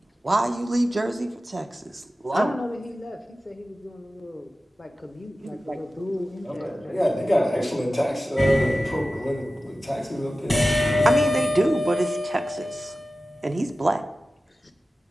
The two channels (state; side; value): normal; both; correlation 0.95